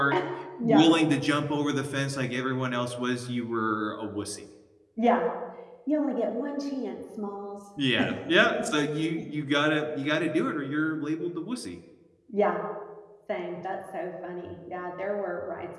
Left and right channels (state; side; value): identical; both; correlation 1.00